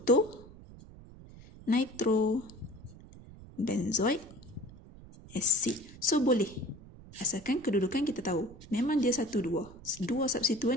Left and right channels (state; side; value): noise; right; rumble, 19 dB below the sound